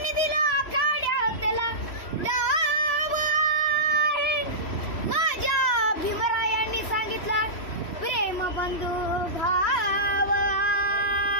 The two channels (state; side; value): late; right; 3.1 ms